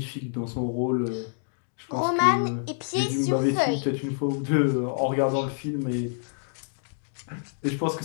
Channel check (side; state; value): right; silent; digital silence